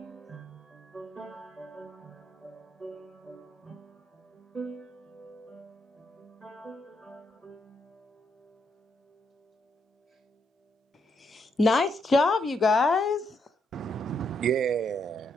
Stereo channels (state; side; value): normal; both; correlation 0.77